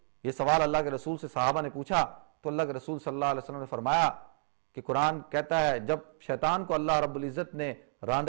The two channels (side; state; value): left; silent; digital silence